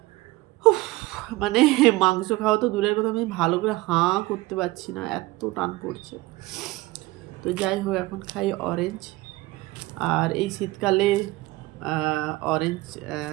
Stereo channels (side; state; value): left; quieter; 20.1 dB